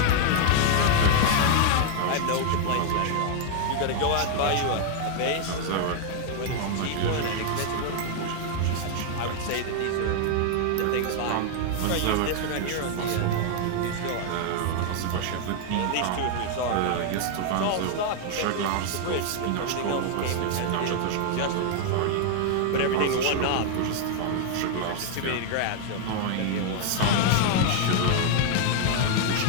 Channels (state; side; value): different; both; correlation 0.00